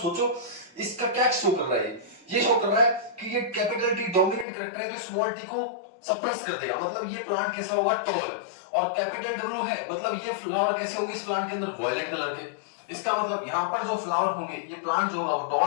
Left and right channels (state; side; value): drops out; right; at 4.5 s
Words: इसका क्या शो कर रहा है, ये शो कर रहा है कि ये कैपिटल टी डोमिनेंट करैक्टर है तो स्मॉल टी को सप्रेस कर देगा, मतलब ये प्लांट कैसा होगा टॉल। और कैपिटल W है मतलब ये फ्लावर कैसे होंगे इस प्लांट के अंदर वायलेट कलर के। इसका मतलब यहाँ पर जो फ्लावर होंगे ये प्लांट जो होगा वो